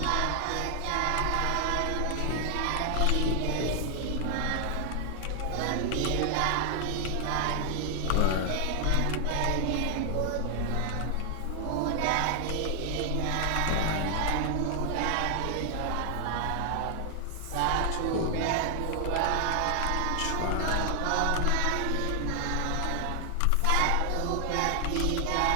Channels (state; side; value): different; both; correlation 0.00